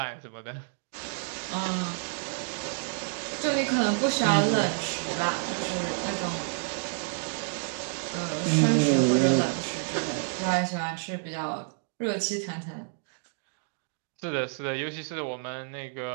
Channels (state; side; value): silent; left; 58 dB below the other